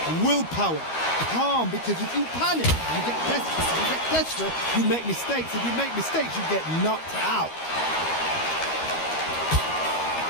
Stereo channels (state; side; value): late; right; 13 ms